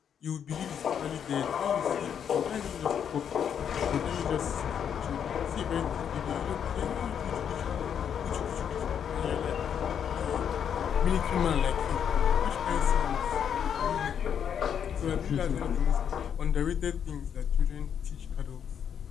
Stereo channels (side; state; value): right; quieter; 8.3 dB